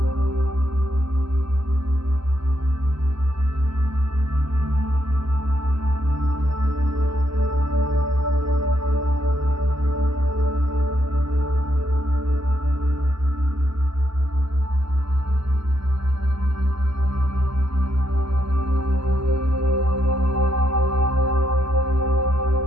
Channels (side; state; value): left; late; 0.76 ms